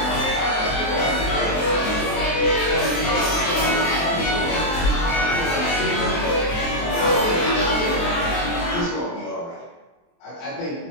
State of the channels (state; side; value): late; right; 23 ms